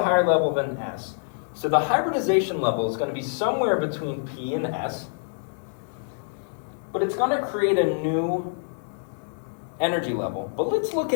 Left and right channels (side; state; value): right; silent; digital silence